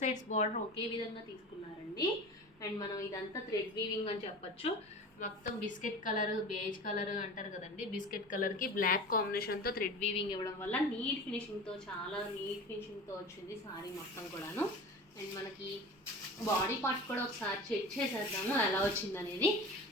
బార్డర్ ఒకే విధంగా తీసుకున్నారండి. అండ్ మనం ఇదంతా థ్రెడ్ వీవింగ్ అని చెప్పచ్చు. మొత్తం బిస్కెట్ కలర్ బేజ్ కలర్ అంటారు కదండి, బిస్కెట్ కలర్కి బ్లాక్ కాంబినేషన్తో థ్రెడ్ వీవింగ్ ఇవ్వడం వల్ల నీట్ ఫినిషింగ్తో చాలా నీట్ ఫినిషింగ్తో వచ్చింది శారీ మొత్తం కూడాను. అండ్ మనకి బాడీ పార్ట్ కూడా ఒకసారి చెక్ చేసేద్దాము ఎలా వచ్చిందనేది.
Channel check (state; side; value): normal; both; correlation 0.35